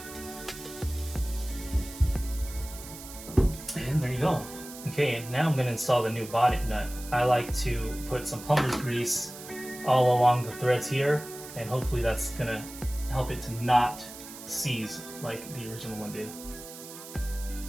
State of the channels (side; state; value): right; noise; hiss, 14 dB below the sound